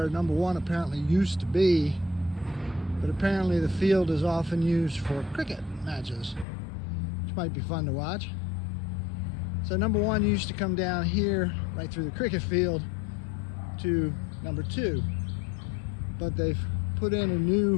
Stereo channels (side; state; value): right; drops out; at 6.5 s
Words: number one apparently used to be, but apparently the field is often used for cricket matches, which might be fun to watch. So number one used to come down here right through the cricket field to number two, but they've put in a